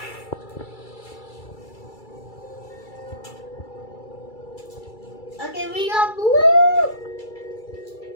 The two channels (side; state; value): right; late; 2.3 ms